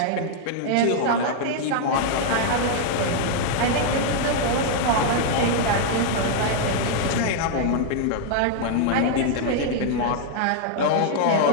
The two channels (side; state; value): both; different; correlation 0.00